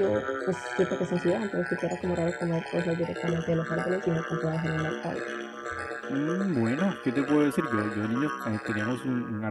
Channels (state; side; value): identical; both; correlation 1.00